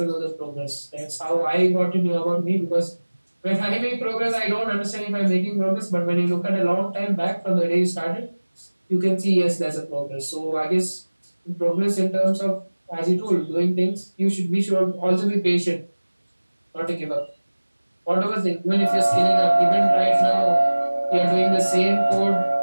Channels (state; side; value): inverted; both; correlation -1.00